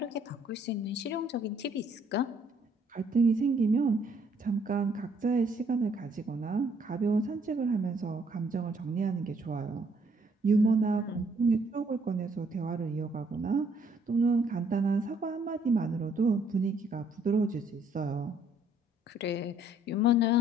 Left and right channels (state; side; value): normal; both; correlation 0.65